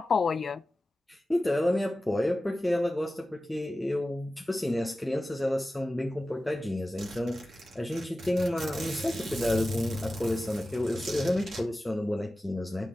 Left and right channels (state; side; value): normal; both; correlation 0.95